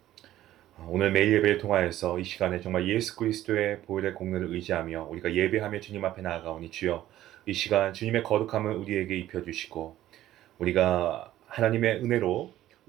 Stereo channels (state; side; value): quieter; left; 13.7 dB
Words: 오늘 매일 예배를 통하여서 이 시간에 정말 예수 그리스도의 보혈의 공로를 의지하며 우리가 예배하며 주님 앞에 나아가오니 주여, 이 시간 주님의 거룩함을 우리에게 입혀주시고 우리가 하나님의 은혜로